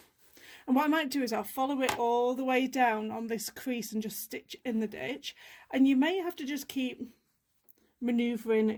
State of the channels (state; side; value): identical; both; correlation 1.00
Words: And what I might do is I'll follow it all the way down on this crease and just stitch in the ditch. And you may have to just keep